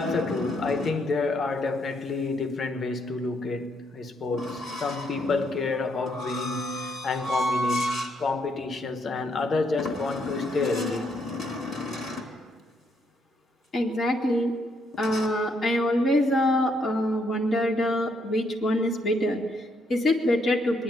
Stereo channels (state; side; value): normal; both; correlation 0.74